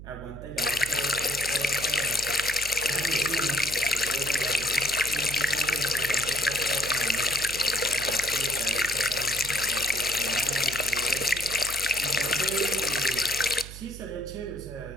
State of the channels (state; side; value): noise; right; hum, 13 dB below the sound